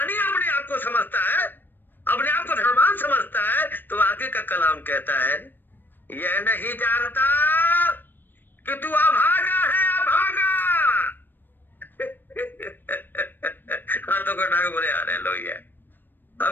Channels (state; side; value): late; right; 0.093 ms